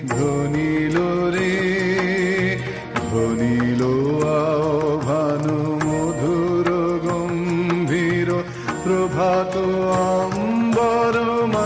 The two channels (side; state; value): both; identical; correlation 1.00